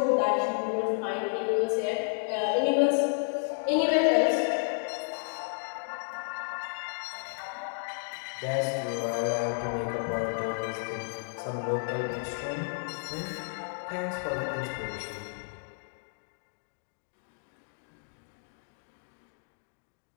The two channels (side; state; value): right; silent; digital silence